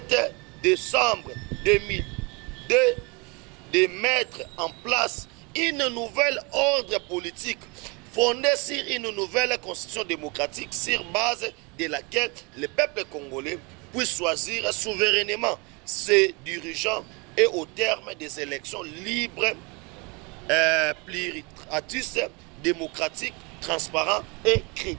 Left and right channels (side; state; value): left; quieter; 29.2 dB